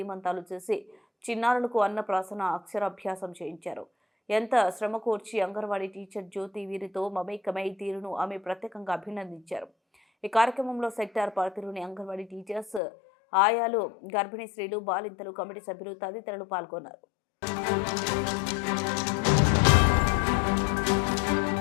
చేసి చిన్నారులకు అన్నప్రాసన అక్షరాభ్యాసం చేయించారు. ఎంత శ్రమ కోర్చి అంగన్వాడీ టీచర్ జ్యోతి వీరితో మమేకమై తీరును ఆమె ప్రత్యేకంగా అభినందించారు. ఈ కార్యక్రమంలో సెక్టార్ పరిధిలోని అంగన్వాడీ టీచర్స్, ఆయాలు, గర్భిణీ స్త్రీలు, బాలింతలు, కమిటీ సభ్యులు తదితరులు పాల్గొన్నారు.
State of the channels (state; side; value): drops out; right; at 12.8 s